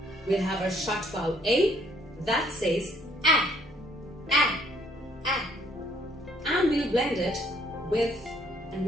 We'll have our short vowel A that says A, A, A. And we'll blend it with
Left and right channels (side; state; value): both; normal; correlation 0.65